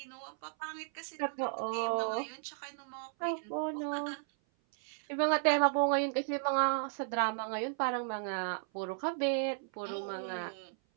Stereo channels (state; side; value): silent; left; 55 dB below the other